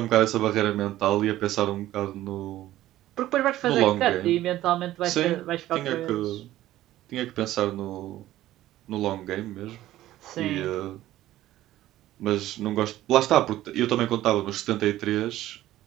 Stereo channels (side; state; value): left; quieter; 14.6 dB